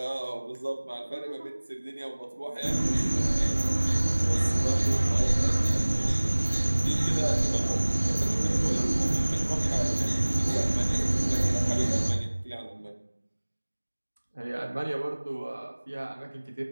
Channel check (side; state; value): both; inverted; correlation -1.00